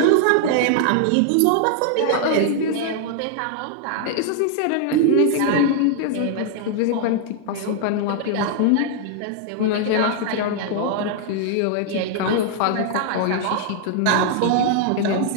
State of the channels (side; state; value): both; different; correlation 0.00